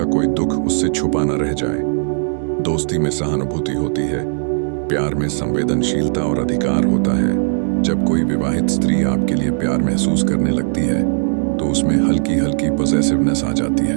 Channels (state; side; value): silent; left; digital silence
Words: कोई दुख उससे छुपा न रह जाए। दोस्ती में सहानुभूति होती है, प्यार में संवेदनशीलता और अधिकार होता है। जब कोई विवाहित स्त्री आपके लिए प्यार महसूस करने लगती है तो उसमें हल्की हल्की पॉसेसिवनेस आ जाती